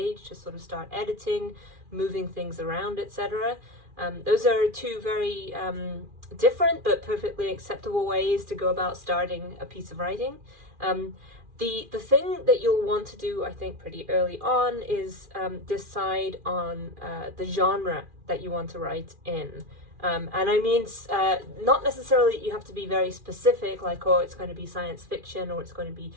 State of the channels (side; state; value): left; late; 2.4 ms